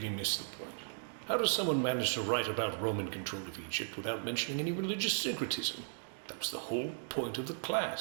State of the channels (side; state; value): left; silent; digital silence